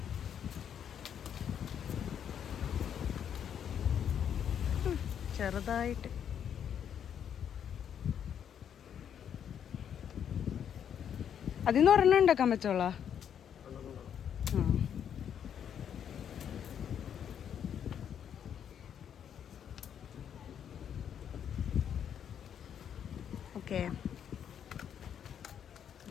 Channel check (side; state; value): right; quieter; 8.7 dB